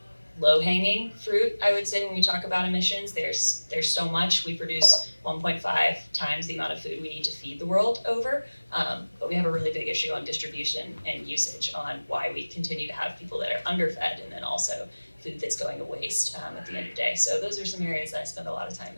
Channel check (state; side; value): inverted; both; correlation -1.00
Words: low-hanging fruit, I would say, when we talk about emissions. There's so much. We produce 1.5 times the amount of food we need to feed the world over, but we have a really big issue on distribution and usage, on why we continue to have people that are underfed, and then also food that's going to waste at the end of the day. So those are some areas that I spend a lot of